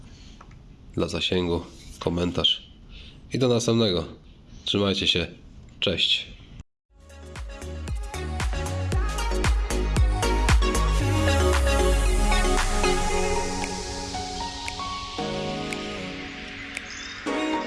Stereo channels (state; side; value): identical; both; correlation 1.00